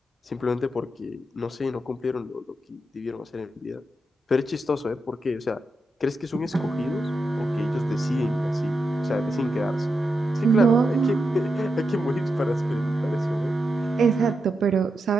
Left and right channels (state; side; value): normal; both; correlation 0.86